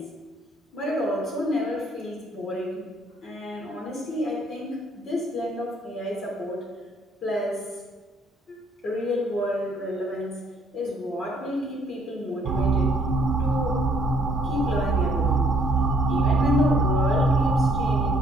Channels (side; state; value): both; normal; correlation 0.65